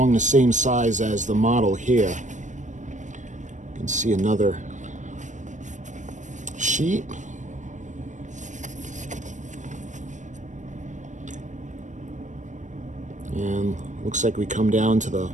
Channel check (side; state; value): left; late; 0.35 ms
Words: the same size as the model here. You can see another sheet. And looks like we come down to the